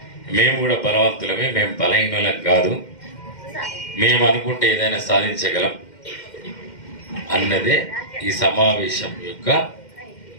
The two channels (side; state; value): right; late; 2.1 ms